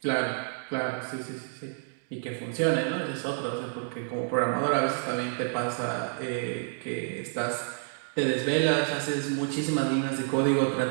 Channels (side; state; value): left; silent; digital silence